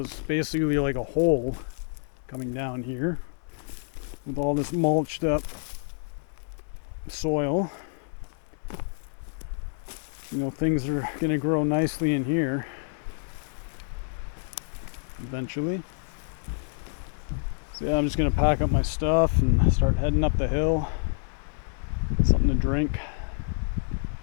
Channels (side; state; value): right; silent; 59 dB below the other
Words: basically like a hole coming down here with all this mulched up soil. You know, things are going to grow nicely in here eventually. So yeah, I'm just going to pack up my stuff and start heading up the hill. Something to drink.